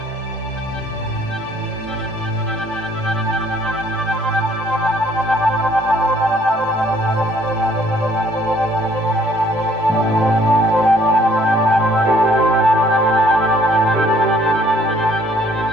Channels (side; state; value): both; normal; correlation 0.61